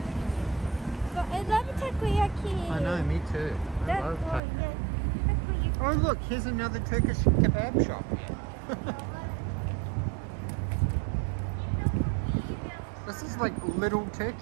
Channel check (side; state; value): left; drops out; at 4.4 s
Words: But I love takoyaki. I know, me too. I love takoyaki. Takoyaki. Oh look, here's another Turkish kebab shop. This is like Little